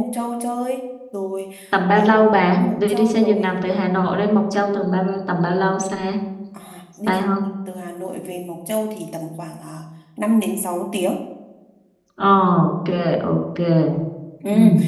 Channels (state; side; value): identical; both; correlation 1.00